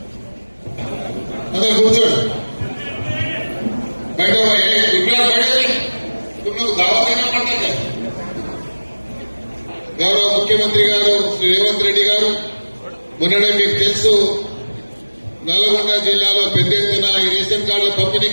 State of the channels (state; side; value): inverted; both; correlation -1.00